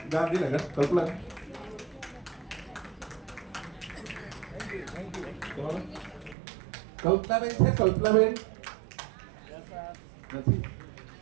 Gandhinagar. Kalpana Kalpanaben છે. કલ્પનાબેન નથી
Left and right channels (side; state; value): left; drops out; at 6.4 s